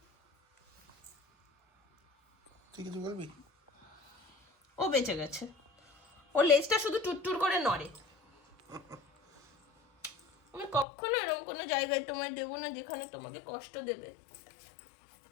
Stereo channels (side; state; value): right; drops out; at 10.9 s